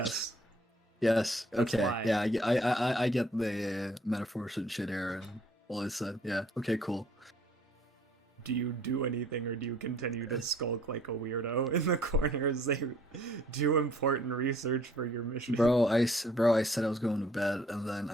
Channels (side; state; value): both; normal; correlation 0.59